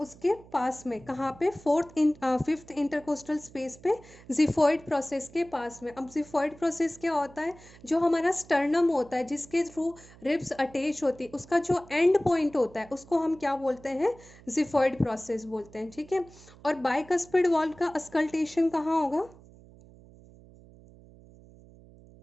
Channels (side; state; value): right; noise; hum, 22 dB below the sound